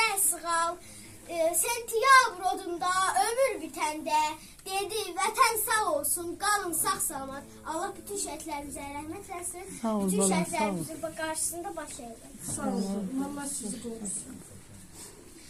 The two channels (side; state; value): both; identical; correlation 1.00